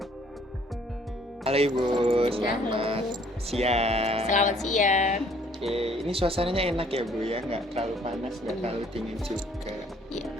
Halo Ibu, selamat siang. Selamat siang. Oke, ini suasananya enak ya Bu ya, nggak terlalu panas, nggak terlalu dingin juga. Ya,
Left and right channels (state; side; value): normal; both; correlation 0.60